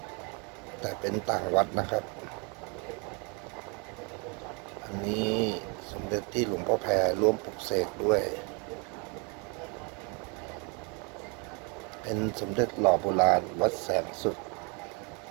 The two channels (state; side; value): quieter; left; 33.0 dB